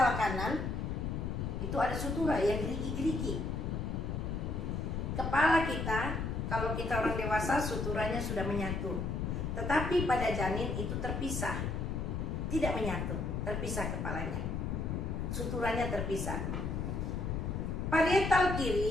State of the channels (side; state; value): left; noise; rumble, 2 dB below the sound